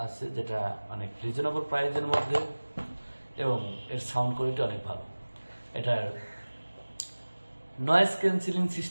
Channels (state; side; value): inverted; both; correlation -1.00